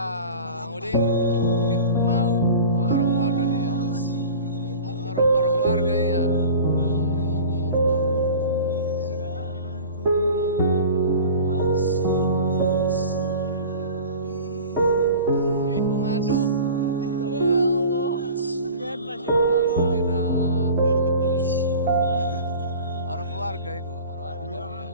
Udin mau orang waduh dia, orang keluarga ya. Mengadu, ya Allah, Alhamdulillah, orang keluarga itu, orang waduh dia.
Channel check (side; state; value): both; inverted; correlation -0.39